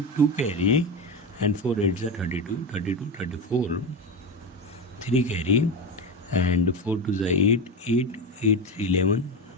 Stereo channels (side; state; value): both; normal; correlation 0.18